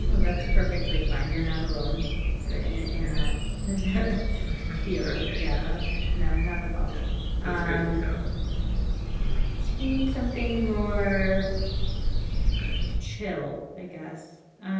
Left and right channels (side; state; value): both; identical; correlation 1.00